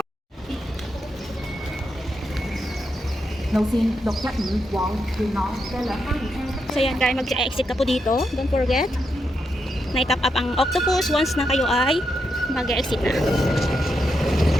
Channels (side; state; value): both; normal; correlation 0.83